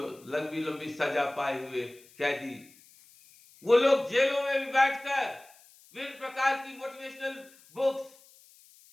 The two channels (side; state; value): left; noise; hiss, 26 dB below the sound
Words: लंबी लंबी सजा पाए हुए कैदी, वो लोग जेलों में भी बैठकर विभिन्न प्रकार की मोटिवेशनल बुक्स